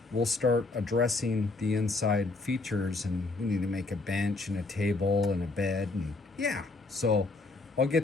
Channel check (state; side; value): quieter; right; 3.4 dB